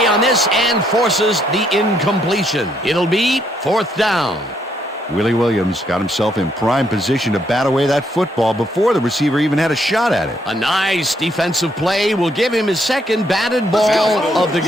on this and forces the incompletion. It'll be fourth down. Willie Williams got himself in prime position to bat away that football before the receiver even had a shot at it. A nice defensive play will give him his second batted ball of the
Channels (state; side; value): normal; both; correlation 0.72